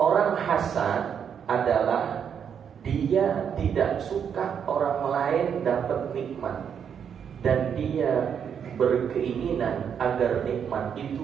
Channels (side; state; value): left; quieter; 7.8 dB